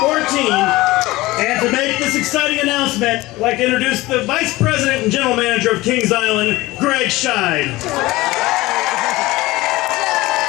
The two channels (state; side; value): quieter; right; 19.3 dB